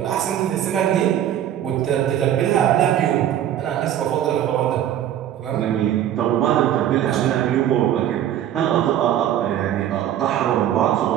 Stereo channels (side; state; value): left; quieter; 11.1 dB